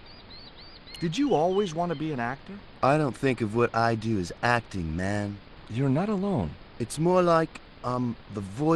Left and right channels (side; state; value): both; identical; correlation 1.00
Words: Did you always want to be an actor? I don't think of what I do as acting, man. You're not alone. It's more like I'm the